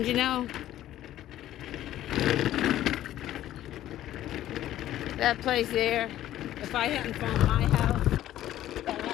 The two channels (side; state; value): right; quieter; 13.2 dB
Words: you know, that place there, if I hadn't found my house, that